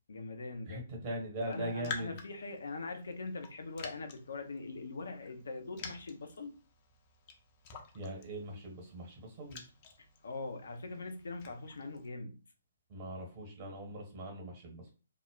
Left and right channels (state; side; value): inverted; both; correlation -0.63